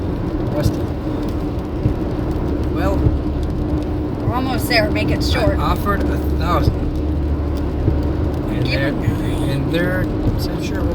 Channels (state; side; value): identical; both; correlation 1.00